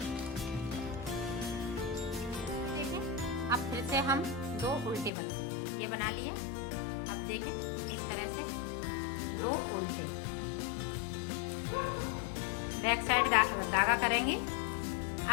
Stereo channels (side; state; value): right; drops out; at 5.1 s